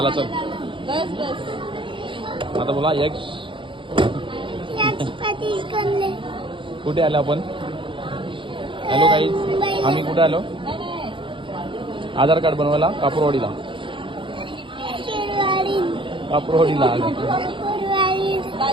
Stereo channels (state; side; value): late; left; 0.24 ms